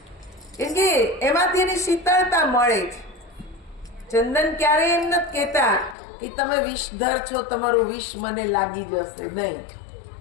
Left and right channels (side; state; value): right; drops out; at 6.0 s